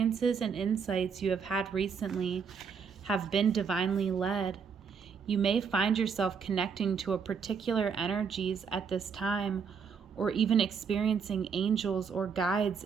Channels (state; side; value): quieter; left; 6.2 dB